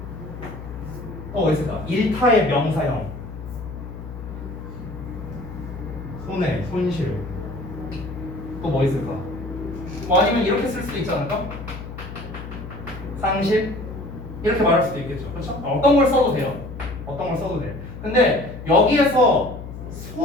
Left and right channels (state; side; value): noise; left; hum, 11 dB below the sound